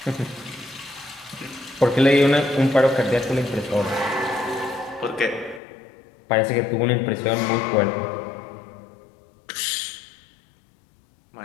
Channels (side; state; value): right; drops out; at 5.6 s